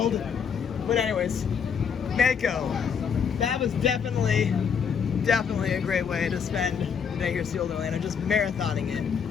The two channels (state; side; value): quieter; right; 6.9 dB